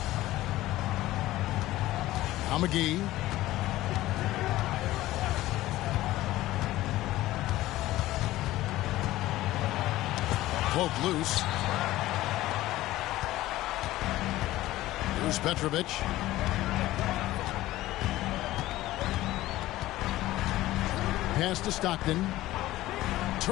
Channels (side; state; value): right; quieter; 16.2 dB